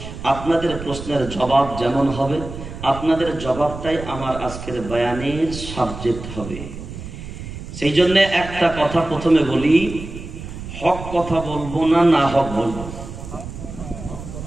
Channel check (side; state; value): right; noise; rumble, 11 dB below the sound